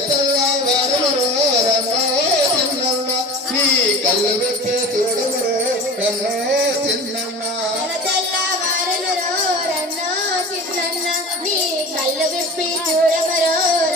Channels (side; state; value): both; normal; correlation 0.36